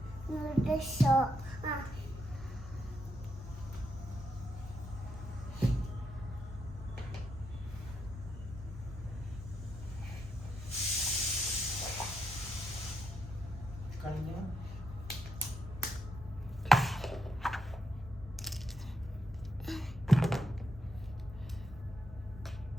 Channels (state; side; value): normal; both; correlation 0.81